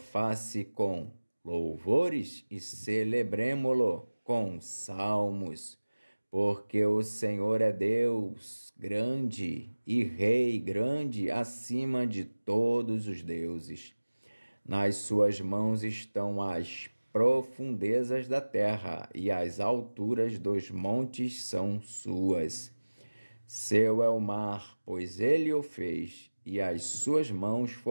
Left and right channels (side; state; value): both; inverted; correlation -1.00